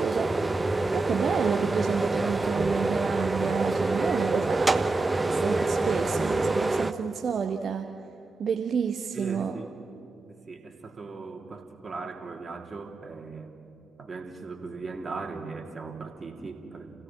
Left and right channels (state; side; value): quieter; left; 3.6 dB